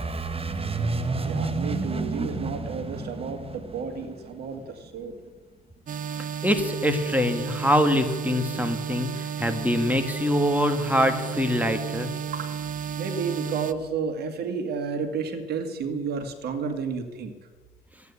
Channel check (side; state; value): both; normal; correlation 0.63